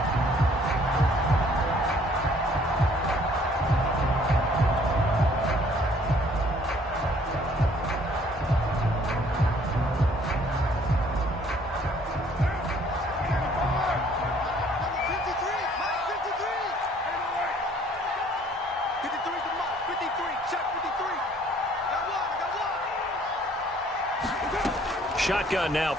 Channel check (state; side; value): normal; both; correlation 0.59